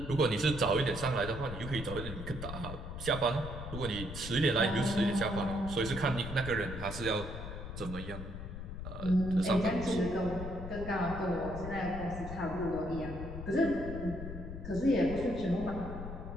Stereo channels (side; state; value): left; noise; rumble, 8 dB below the sound